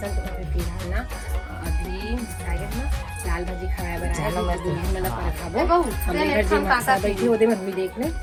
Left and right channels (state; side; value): identical; both; correlation 1.00